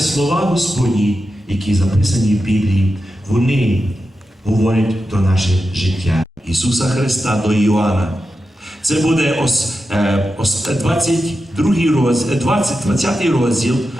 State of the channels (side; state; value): both; normal; correlation 0.90